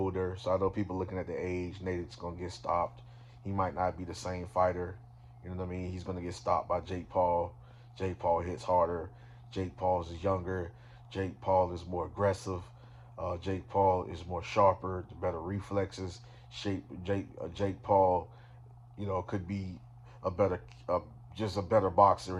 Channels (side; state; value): both; identical; correlation 1.00